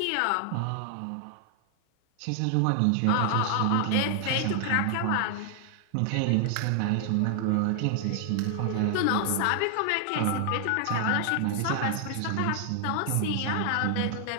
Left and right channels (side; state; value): both; different; correlation 0.00